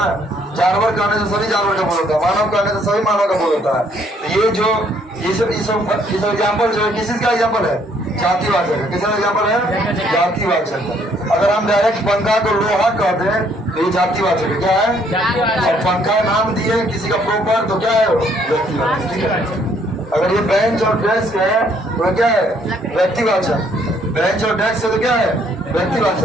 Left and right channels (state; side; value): normal; both; correlation 0.66